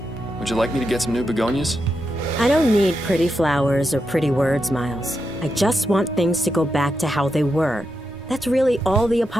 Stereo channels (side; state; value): both; normal; correlation 0.86